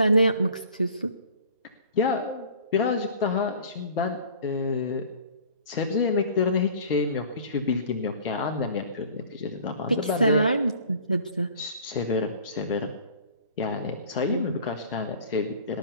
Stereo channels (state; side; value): inverted; both; correlation -0.47